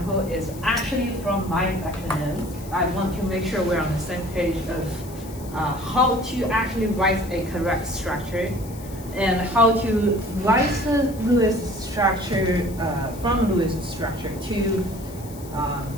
is actually from my lecture notes. I want to make sure we're on the same page of how to actually write a correct structure and how to write the Lewis structure from Lewis structure to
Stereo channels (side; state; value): left; noise; hiss, 19 dB below the sound